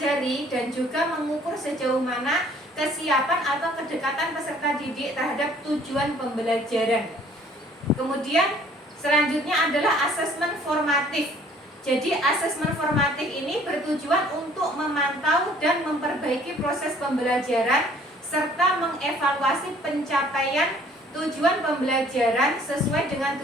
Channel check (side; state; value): both; normal; correlation 0.56